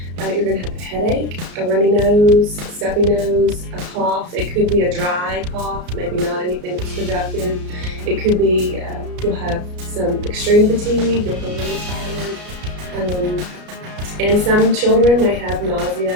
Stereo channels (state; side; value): late; left; 33 ms